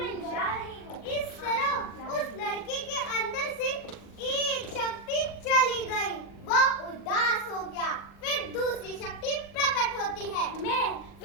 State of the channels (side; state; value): right; late; 40 ms